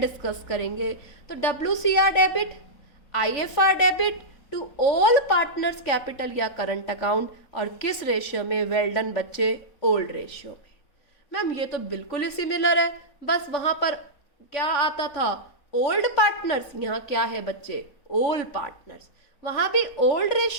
करेंगे। तो WCR debit, IFR debit to all partners capital या करंट अकाउंट, और किस रेशियो में? वेल डन बच्चे, ओल्ड रेशियो में। मैम ये तो बिल्कुल ही सिमिलर है, बस वहां पर क्या आता था? ओल्ड पार्टनर्स, यहाँ क्या है बच्चे? Old partners. वहां भी ओल्ड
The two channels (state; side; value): late; right; 3.5 ms